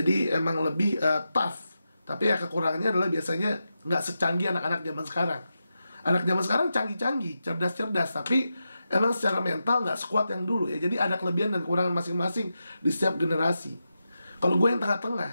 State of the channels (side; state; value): both; inverted; correlation -0.89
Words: emang lebih tough. Tapi ya kekurangannya adalah biasanya nggak secanggih anak-anak zaman sekarang. Anak zaman sekarang canggih-canggih, cerdas-cerdas, tapi emang secara mental nggak sekuat yang dulu ya. Jadi ada kelebihan dan kekurangan masing-masing di setiap generasi. Kalau gue yang tengah-tengah